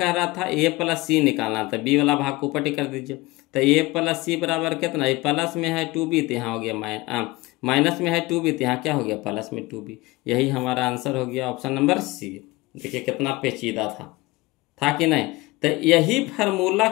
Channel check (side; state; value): right; quieter; 21.3 dB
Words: रहा था, a प्लस c निकालना था, b वाला भाग को ऊपर कर दीजिए, तो a प्लस c बराबर कितना, ये प्लस में है 2b तो यहाँ हो गया माइनस में है 2b तो यहाँ क्या हो गया प्लस में 2b। यही हमारा आंसर हो गया ऑप्शन नंबर सी। देखिए कितना पेचीदा था कि नहीं। तो यही फार्मूला